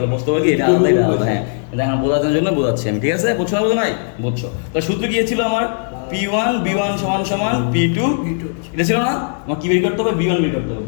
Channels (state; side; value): silent; right; digital silence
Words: বুঝতে পারবে কি এটা আলাদা, এটা আলাদা। হ্যাঁ, এটা এখন বোঝানোর জন্য বোঝাচ্ছি আমি, ঠিক আছে? বুঝছো না বোঝো নাই? বুঝছো? তো সূত্র কি ছিল আমার? P1 B1 সমান সমান P2, এটা ছিল না? আমার কি বের করতে হবে? B1 বের করতে হবে।